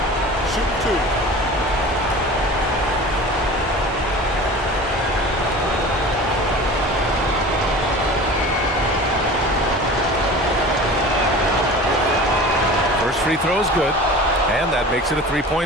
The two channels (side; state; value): both; normal; correlation 0.38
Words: Shoot 2. Free throw is good, and that makes it a